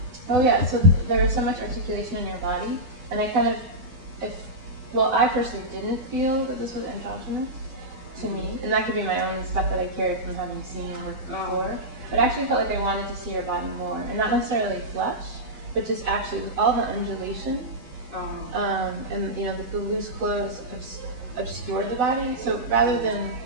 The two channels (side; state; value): left; late; 8.0 ms